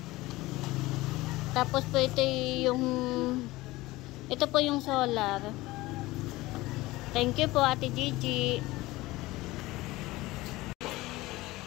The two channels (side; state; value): right; quieter; 19.3 dB